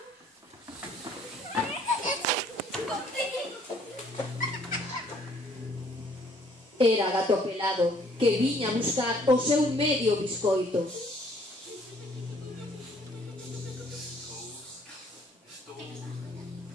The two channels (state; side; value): normal; both; correlation 0.61